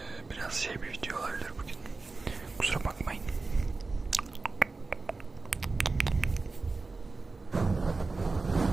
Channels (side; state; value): left; quieter; 3.8 dB